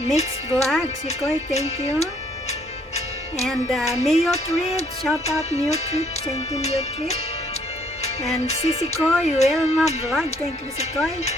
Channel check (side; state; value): both; normal; correlation 0.65